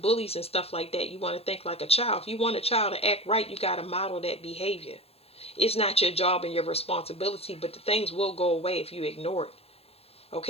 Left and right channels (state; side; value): late; right; 0.29 ms